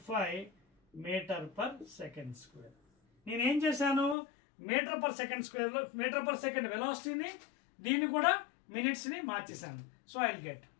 మీటర్ పర్ సెకండ్ స్క్వేర్. నేనేం చేశాను, మీటర్ పర్ సెకండ్ స్క్వేర్లో మీటర్ పర్ సెకండ్ వెలాసిటీని దీన్ని కూడా మినిట్స్ని మార్చేశాను. So I get.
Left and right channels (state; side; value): drops out; right; at 4.2 s